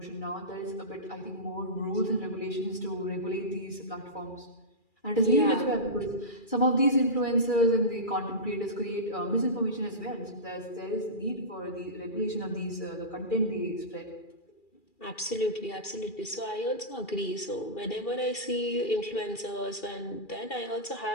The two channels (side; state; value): right; late; 2.4 ms